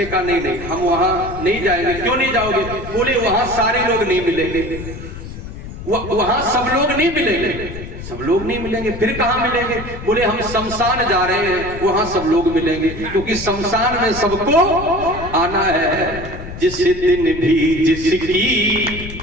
कहा नहीं हम वहां नहीं जाएंगे। क्यों नहीं जाओगे? बोले वहां सारे लोग नहीं मिलेंगे, वहां सब लोग नहीं मिलेंगे। सब लोग नहीं मिलेंगे, फिर कहां मिलेंगे? बोले हम शमशान जा रहे हैं, वहां सब लोग मिलेंगे, क्योंकि शमशान में सबको आना है। जिस दिन भी जिसकी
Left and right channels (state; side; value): noise; left; rumble, 11 dB below the sound